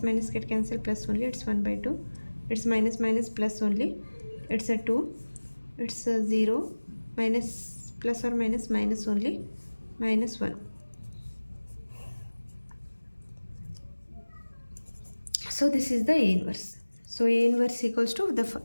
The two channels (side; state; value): both; inverted; correlation -1.00